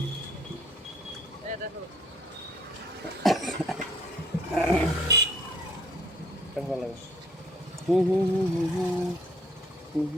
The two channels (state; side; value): normal; both; correlation 0.62